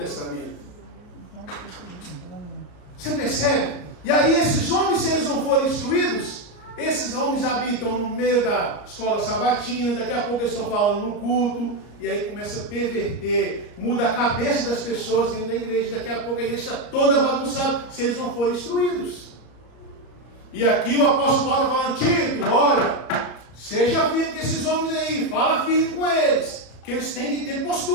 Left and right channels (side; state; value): right; late; 34 ms